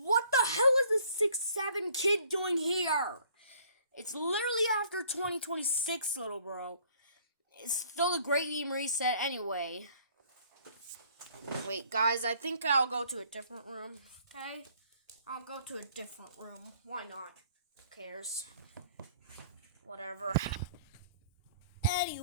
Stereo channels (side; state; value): both; inverted; correlation -0.59